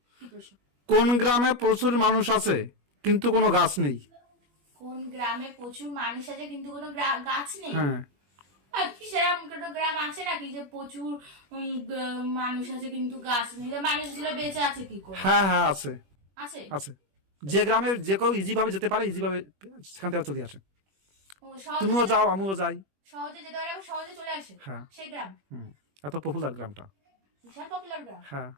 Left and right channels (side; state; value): left; late; 21 ms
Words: কি প্রশ্ন? কোন গ্রামে প্রচুর মানুষ আছে কিন্তু কোনো গাছ নেই? কোন গ্রামে প্রচুর মানুষ আছে কিন্তু কোনো গাছ নেই? হ্যাঁ। কি সেরকম কোনো গ্রাম আছে নাকি যে প্রচুর মানুষ আছে কিন্তু গাছ নেই? মানুষগুলো বেঁচে আছে কি করে? হ্যাঁ হ্যাঁ আছে। আছে। আছে। যে গ্রামে যে কেউ ইজি ভাবে যেতে পারে, ইজি ভাবে সেখান থেকে চলে আসে। ও, সহজে তুমিও যাও, আমিও যাই। সহজে যেতে পারে, সহজে চলে আসে। হ্যাঁ। সেই গ্রাম এত পপুলার গ্রামটা। বিশাল পপুলার গ্রাম, হ্যাঁ।